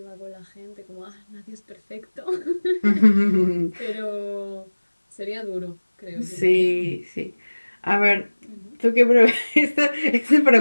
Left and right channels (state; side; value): inverted; both; correlation -1.00